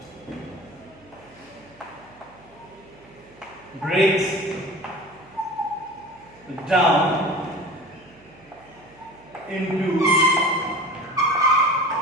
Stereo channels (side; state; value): right; noise; hum, 27 dB below the sound